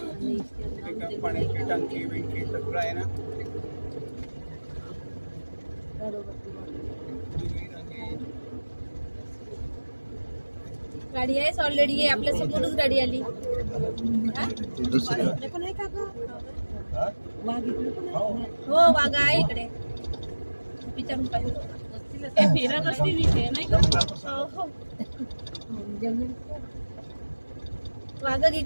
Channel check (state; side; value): inverted; both; correlation -1.00